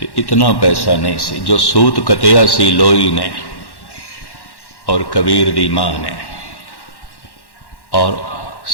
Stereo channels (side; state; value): right; late; 1.1 ms